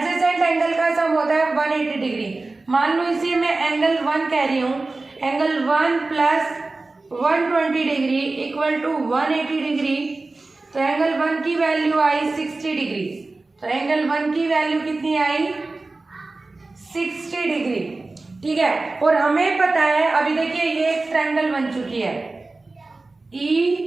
एंगल का सम होता है 180 डिग्री। मान लो इसे मैं एंगल 1 कह रही हूँ, angle 1 plus 120 degree equal to 180 degree, तो एंगल 1 की वैल्यू आई 60 डिग्री। तो एंगल 1 की वैल्यू कितनी आई 60 डिग्री, ठीक है। और हमें पता है अभी देखिए ये एक ट्रायंगल बन चुकी है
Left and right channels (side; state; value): left; quieter; 3.4 dB